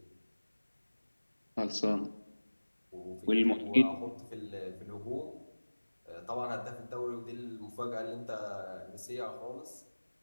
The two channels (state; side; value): inverted; both; correlation -1.00